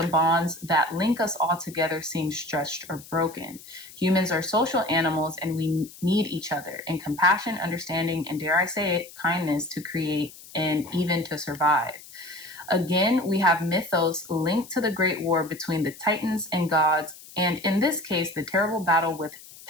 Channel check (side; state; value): left; noise; hiss, 18 dB below the sound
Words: bonds that link us all together seem stretched or broken. Humans are social animals and we need each other in compassion, understanding, and dare I say it, kindness to create and even to survive. Again, we have mythos linked to the great war between the Titans and gods, and in this case, the terrible battle with